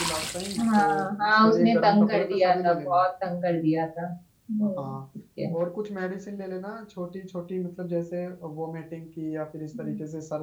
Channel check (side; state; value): both; identical; correlation 1.00